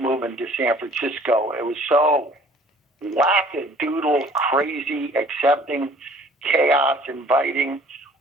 to San Francisco. It was so wackadoodle, crazy, accepting, chaos, inviting.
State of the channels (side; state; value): both; normal; correlation 0.53